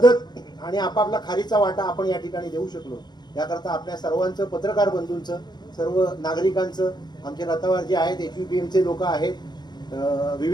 आणि आपापला खारीचा वाटा आपण या ठिकाणी देऊ शकलो. याकरता आपल्या सर्वांचं, पत्रकार बंधूंचं, सर्व नागरिकांचं, आमचे रथावर जे आहेत, HVPMचे लोक आहेत,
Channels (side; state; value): right; late; 0.21 ms